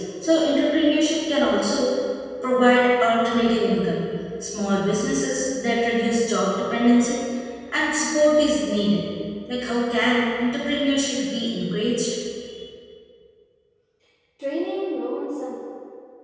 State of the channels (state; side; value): identical; both; correlation 1.00